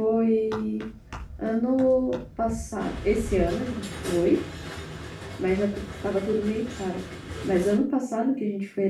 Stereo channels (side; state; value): both; identical; correlation 1.00